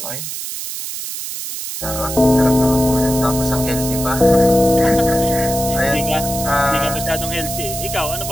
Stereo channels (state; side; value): noise; right; hiss, 7 dB below the sound